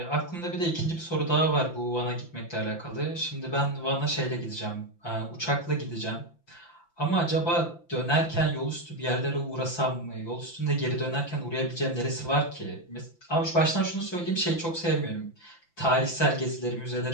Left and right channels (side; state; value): right; late; 5.9 ms